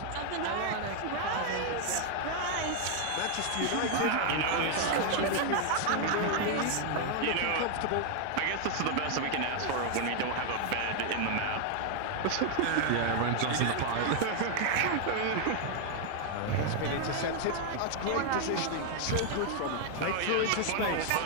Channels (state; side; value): different; both; correlation 0.00